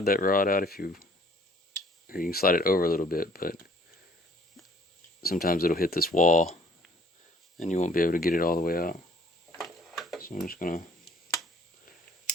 that rod out or you can slide it over a little bit, but sometimes it'll hit this wall and you won't be able to get it all the way out. So I'm just gonna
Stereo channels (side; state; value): both; normal; correlation 0.57